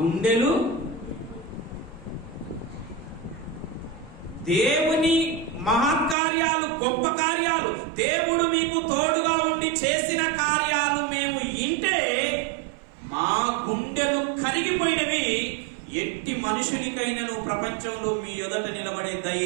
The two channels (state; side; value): drops out; left; at 6.2 s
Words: దేవుని మహత్కార్యాలు, గొప్ప కార్యాలు, దేవుడు మీకు తోడుగా ఉండి చేసిన కార్యాలు మేము వింటే మా గుండెలు కరిగిపోయినవి. ఎట్టి మనుషునికైనను ప్రపంచంలో మీ ఎదుట నిలబడే